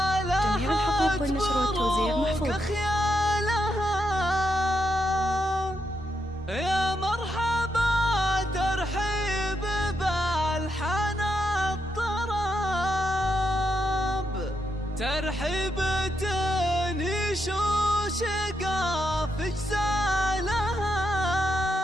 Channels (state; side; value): normal; both; correlation 0.82